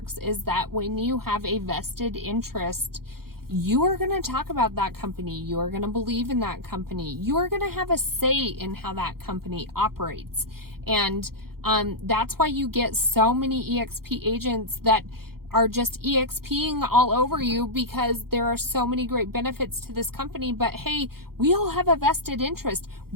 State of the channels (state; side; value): late; left; 0.94 ms